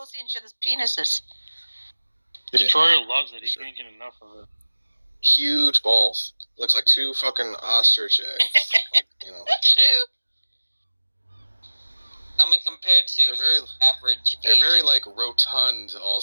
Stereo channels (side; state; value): both; inverted; correlation -1.00